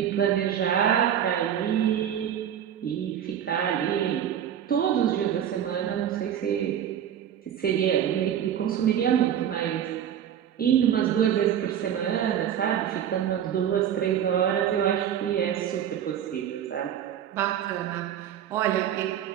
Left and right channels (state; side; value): quieter; left; 9.7 dB